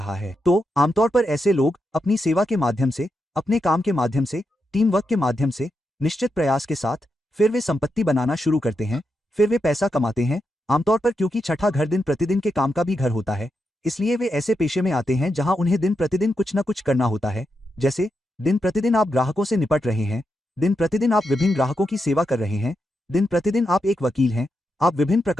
है। तो आमतौर पर ऐसे लोग अपनी सेवा के माध्यम से, अपने काम के माध्यम से, टीम वर्क के माध्यम से, निश्चित प्रयास के साथ फिर वे संपत्ति बनाना शुरू करते हैं, फिर वे पैसा कमाते हैं। आमतौर पर क्योंकि छठा घर दिन प्रतिदिन के काम का भी घर होता है, इसलिए वे ऐसे पेशे में आते हैं जहां उन्हें दिन प्रतिदिन कुछ न कुछ करना होता है। जैसे दिन प्रतिदिन आप ग्राहकों से निपट रहे हैं, दिन प्रतिदिन आप विभिन्न ग्राहकों की सेवा कर रहे हैं, दिन प्रतिदिन आप एक वकील हैं, आप विभिन्न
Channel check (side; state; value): both; normal; correlation 0.85